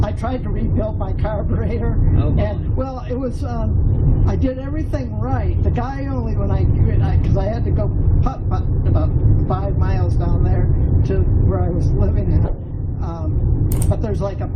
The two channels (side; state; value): both; identical; correlation 1.00